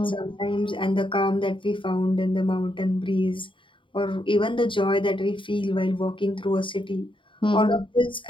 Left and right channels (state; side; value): late; right; 0.24 ms